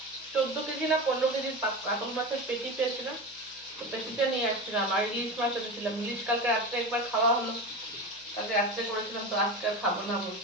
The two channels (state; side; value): noise; left; hum, 29 dB below the sound